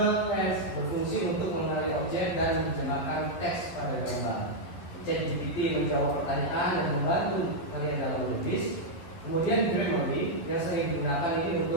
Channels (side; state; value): right; late; 11 ms